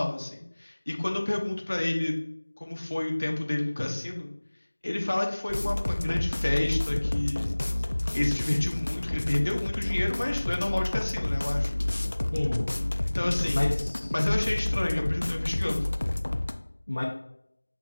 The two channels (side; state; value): both; inverted; correlation -1.00